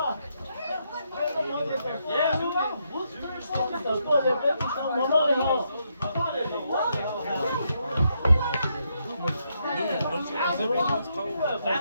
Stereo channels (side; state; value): both; inverted; correlation -0.78